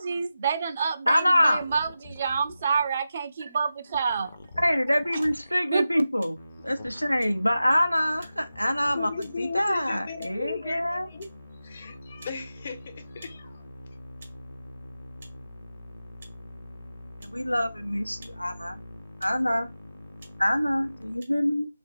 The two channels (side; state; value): both; inverted; correlation -0.93